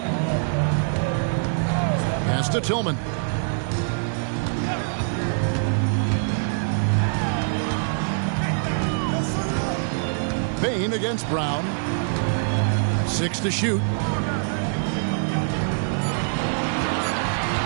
Pass to Tillman. Bane against Brown. 6 to shoot.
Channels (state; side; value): silent; left; 63 dB below the other